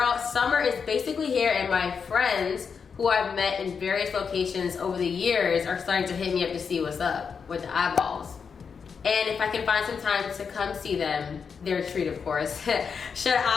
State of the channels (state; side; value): quieter; right; 6.1 dB